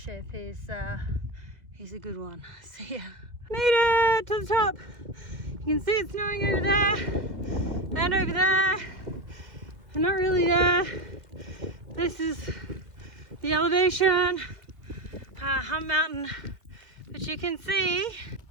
is a good one. So yeah, made it to the top. You can see it's snowing over there and over there, but not really there. This is the elevation, Hump Mountain, but you can see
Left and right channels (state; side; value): late; left; 2.4 ms